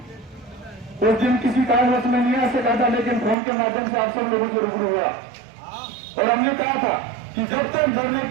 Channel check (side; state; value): left; drops out; at 3.4 s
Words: उस दिन किसी कारणवश में नहीं आ सका था, लेकिन फोन के माध्यम से आप सब लोगों से रूबरू हुआ और हमने कहा था कि जब तक धरने